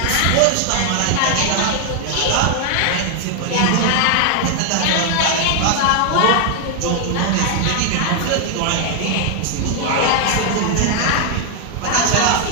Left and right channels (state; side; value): different; both; correlation 0.01